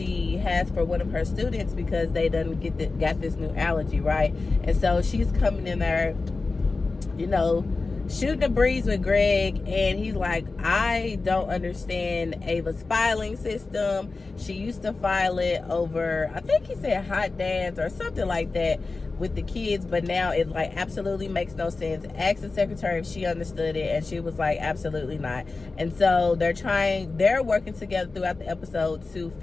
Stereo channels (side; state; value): right; quieter; 3.8 dB